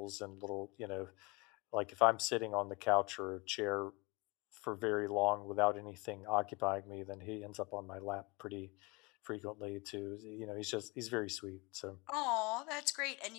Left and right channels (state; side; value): quieter; right; 26.7 dB